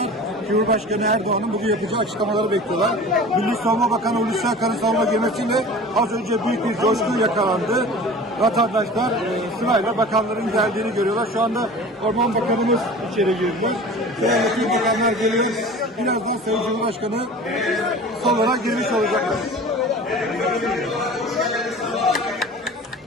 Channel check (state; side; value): normal; both; correlation 0.39